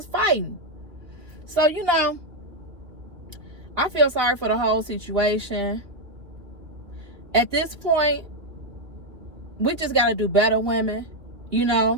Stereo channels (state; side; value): late; left; 2.5 ms